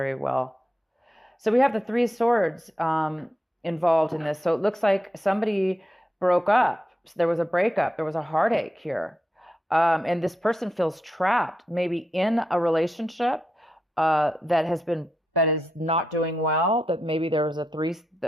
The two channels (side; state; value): both; normal; correlation 0.85